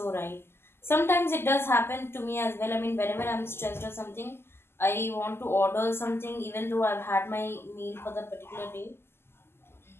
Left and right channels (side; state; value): right; late; 0.12 ms